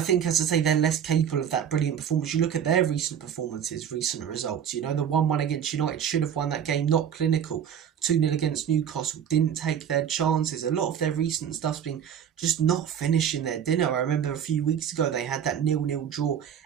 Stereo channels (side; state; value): left; quieter; 8.8 dB